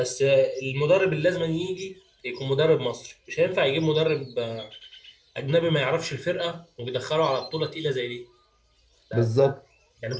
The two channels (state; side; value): identical; both; correlation 1.00